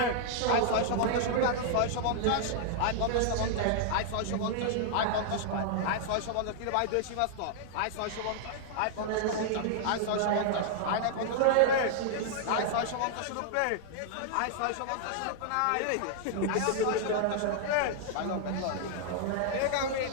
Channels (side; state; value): both; different; correlation -0.01